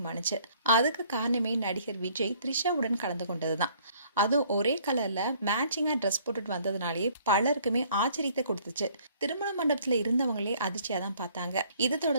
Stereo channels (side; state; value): both; inverted; correlation -0.60